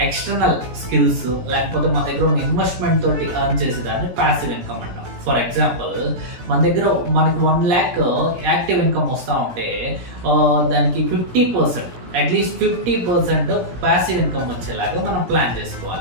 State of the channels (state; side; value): late; left; 17 ms